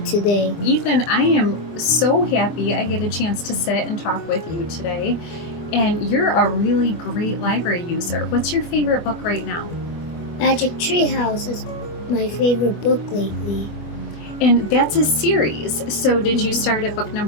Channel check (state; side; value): late; right; 25 ms